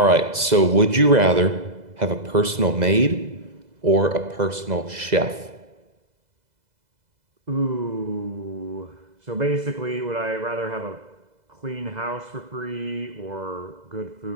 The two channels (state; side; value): late; left; 2.0 ms